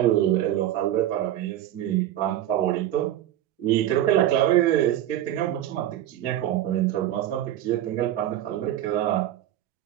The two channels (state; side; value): quieter; left; 12.6 dB